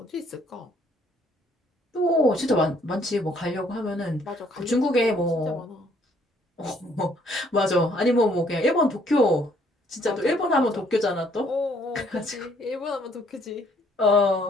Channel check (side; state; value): both; normal; correlation 0.64